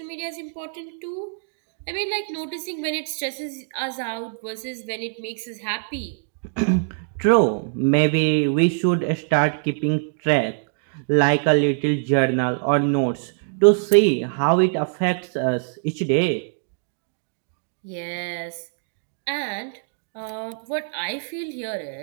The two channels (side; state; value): left; silent; digital silence